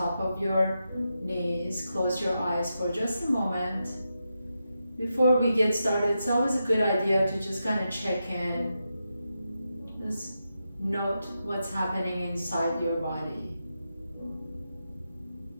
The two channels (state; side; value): inverted; both; correlation -0.87